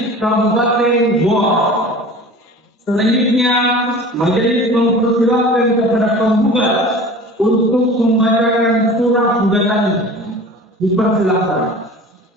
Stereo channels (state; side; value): normal; both; correlation 0.40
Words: Kabupaten Goa. Selanjutnya, majelis mempersilahkan kepada penggugat untuk membacakan surat gugatannya. Dipersilahkan.